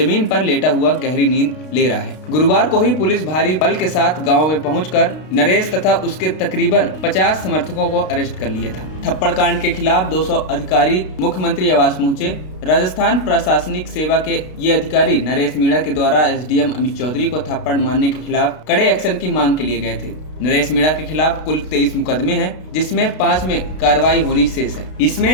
पर लेटा हुआ गहरी नींद ले रहा है। गुरुवार को ही पुलिस भारी बल के साथ गांव में पहुंचकर नरेश तथा उसके तकरीबन 50 समर्थकों को अरेस्ट कर लिया था। थप्पड़ कांड के खिलाफ 200 अधिकारी मुख्यमंत्री आवास पहुंचे। राजस्थान प्रशासनिक सेवा के ये अधिकारी नरेश मीणा के द्वारा एसडीएम अमित चौधरी को थप्पड़ मारने के खिलाफ कड़े एक्शन की मांग के लिए गए थे। नरेश मीणा के खिलाफ कुल 23 मुकदमे हैं, जिसमें 5 में कार्रवाई होनी शेष है।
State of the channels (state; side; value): late; right; 32 ms